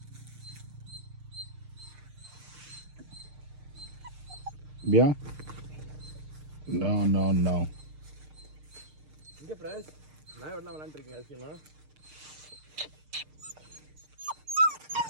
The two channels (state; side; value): late; left; 6.6 ms